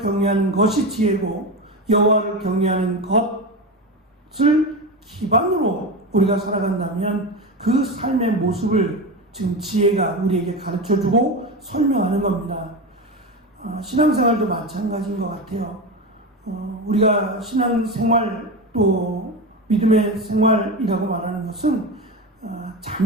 것이 지혜고, 여호와를 경외하는 것을 기반으로 우리가 살아간다면 그 삶의 모습을 지금 지혜가 우리에게 가르쳐주고 설명하는 겁니다. 신앙생활도 마찬가지인 것 같아요. 우리가 신앙생활 또 믿음의 생활이라고 말하는 것은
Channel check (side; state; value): both; normal; correlation 0.21